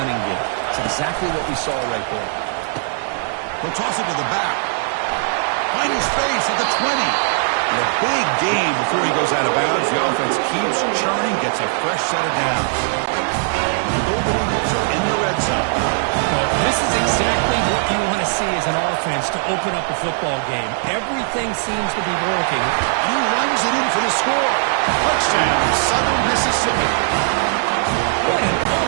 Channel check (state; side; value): silent; left; digital silence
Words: game. It's exactly what we saw right there. He'll toss it to the back. Finding space at the 20. And a big gain before he goes out of bounds. The offense keeps churning, gets a fresh set of downs. The Golden Eagles are in the red zone. Well, this is exactly what you want to see as an offense to open up a football game. Everything seems to be working. And he runs it in for the score. Touchdown, Southern Mississippi.